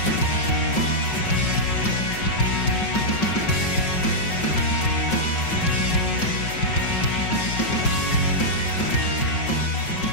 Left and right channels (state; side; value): late; right; 5.4 ms